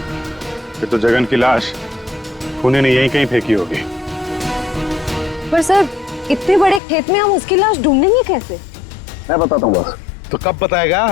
फिर तो जगन की लाश पुणे ने यहीं कहीं फेंकी होगी। पर सर इतने बड़े खेत में हम उसकी लाश ढूंढेंगे कैसे? मैं बताता हूँ बस। तो कब बताएगा?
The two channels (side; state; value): right; drops out; at 6.8 s